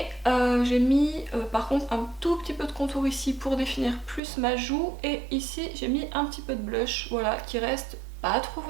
j'ai mis par contre un tout petit peu de contour ici pour définir plus ma joue. Et ici j'ai mis un petit peu de blush, voilà, qui reste pas trop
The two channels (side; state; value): left; drops out; at 4.2 s